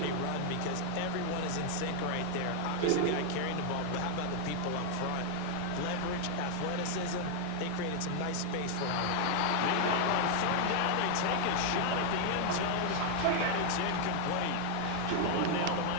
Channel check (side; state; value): both; different; correlation 0.00